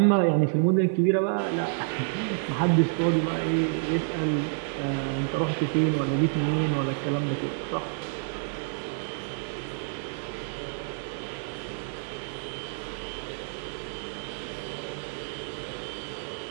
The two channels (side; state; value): left; silent; digital silence